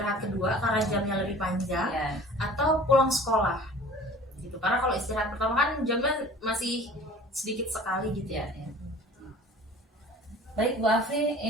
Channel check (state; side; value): normal; both; correlation 0.45